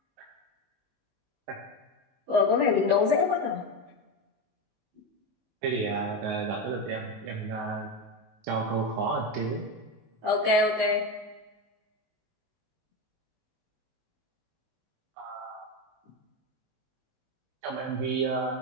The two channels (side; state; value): left; late; 19 ms